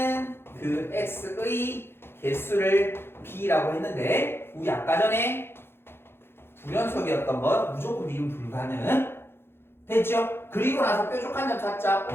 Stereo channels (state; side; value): late; right; 0.11 ms